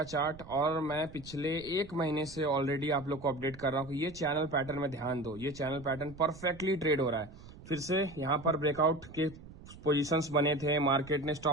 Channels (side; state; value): right; noise; rumble, 17 dB below the sound